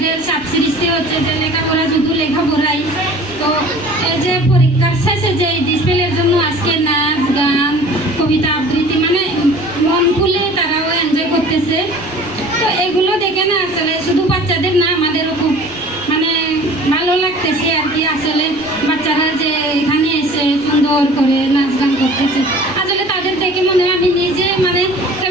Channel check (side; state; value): right; noise; rumble, 24 dB below the sound